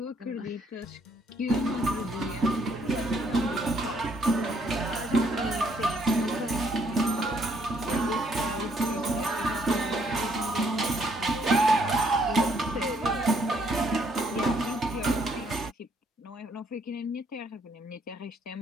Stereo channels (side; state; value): both; normal; correlation 0.69